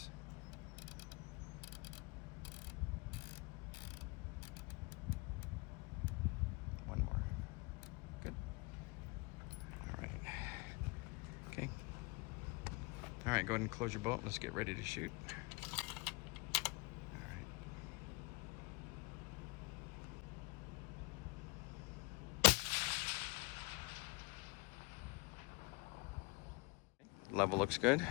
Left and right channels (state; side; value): quieter; right; 27.3 dB